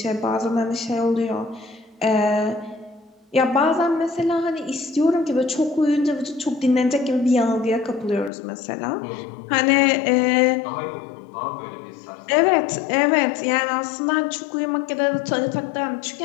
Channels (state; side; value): drops out; right; at 8.3 s